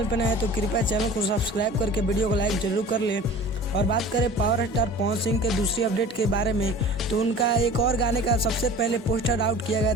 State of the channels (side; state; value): both; normal; correlation 0.42